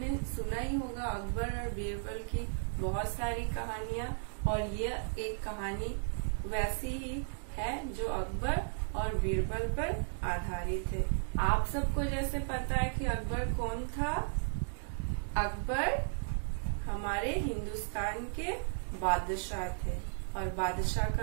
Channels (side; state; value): left; silent; digital silence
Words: सुना ही होगा, अकबर और बीरबल की बहुत सारी कहानियां, और यह एक कहानी वैसी ही है जो अकबर और बीरबल पर आधारित है। आप सबको जैसे पता है कि अकबर कौन था। अकबर हमारे हिंदुस्तान के बादशाह थे, और बादशाह